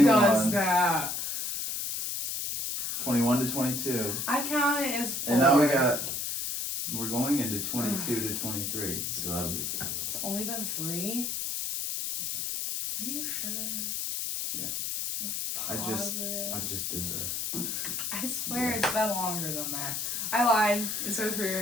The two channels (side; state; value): left; noise; hiss, 2 dB below the sound